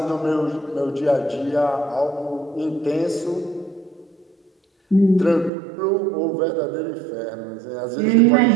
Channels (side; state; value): left; drops out; at 5.5 s